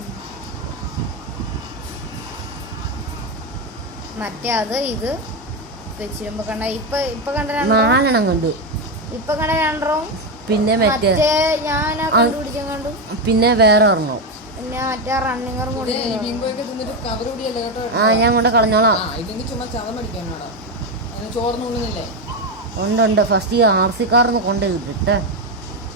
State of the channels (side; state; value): both; normal; correlation 0.10